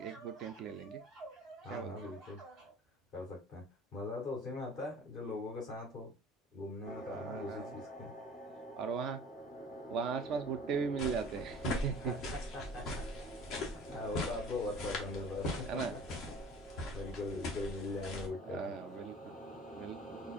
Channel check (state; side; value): normal; both; correlation 0.46